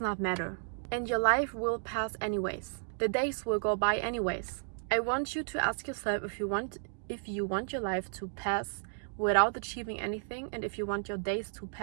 matter. And your life will pass anyways. The days will go by anyways. I want you to ask yourself if you want your life to pass without achieving anything, and if you want your days to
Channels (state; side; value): silent; left; digital silence